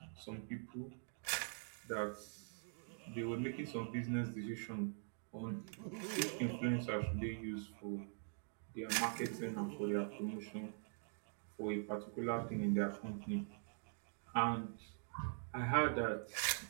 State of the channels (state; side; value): silent; left; digital silence